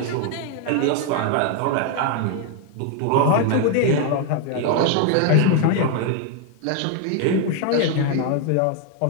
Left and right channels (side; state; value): both; different; correlation 0.00